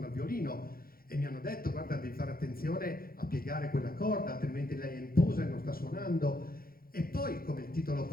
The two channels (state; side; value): late; right; 0.43 ms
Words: il violino, e mi hanno detto: guarda, devi fare attenzione a piegare quella corda, altrimenti lei è in posa e non sta suonando. E poi, come il titolo